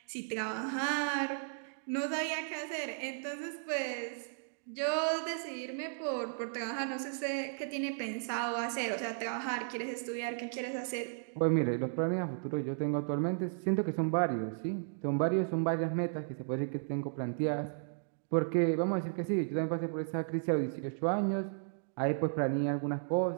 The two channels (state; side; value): silent; left; digital silence